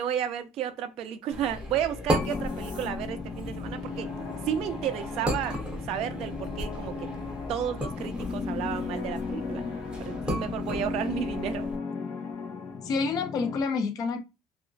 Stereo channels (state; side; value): normal; both; correlation 0.54